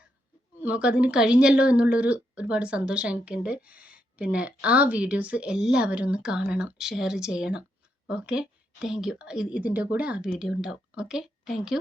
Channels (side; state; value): both; normal; correlation 0.80